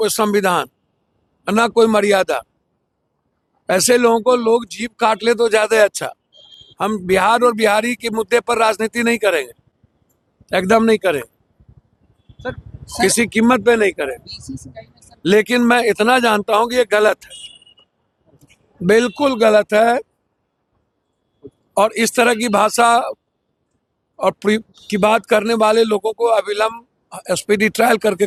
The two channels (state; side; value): identical; both; correlation 1.00